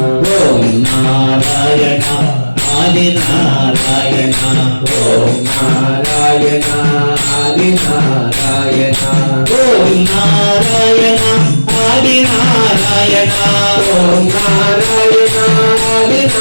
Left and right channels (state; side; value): inverted; both; correlation -1.00